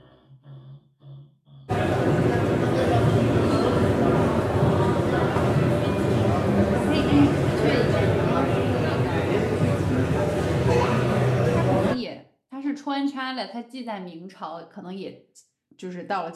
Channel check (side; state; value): both; identical; correlation 1.00